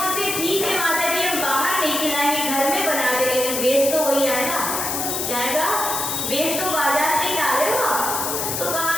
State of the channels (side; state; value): left; noise; hiss, 2 dB below the sound